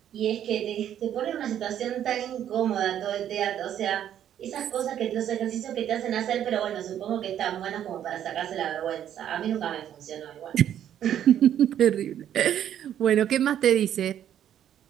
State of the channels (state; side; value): quieter; left; 10.4 dB